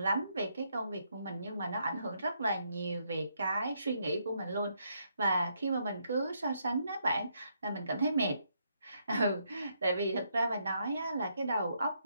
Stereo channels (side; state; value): both; inverted; correlation -0.76